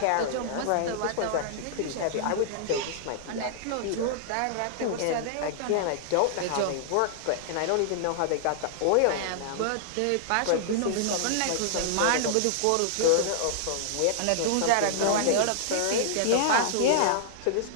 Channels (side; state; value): both; different; correlation -0.01